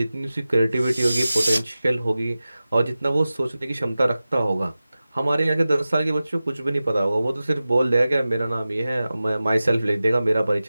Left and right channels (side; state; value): both; inverted; correlation -0.96